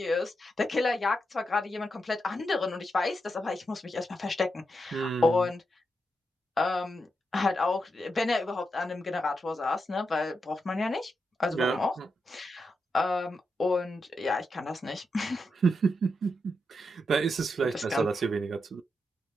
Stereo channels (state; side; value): normal; both; correlation 0.85